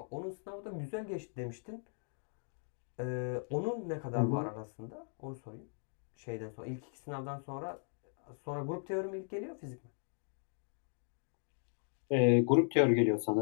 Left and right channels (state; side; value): silent; right; 53 dB below the other